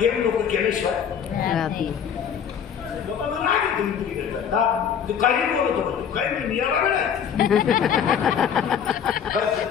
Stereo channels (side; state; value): right; quieter; 8.0 dB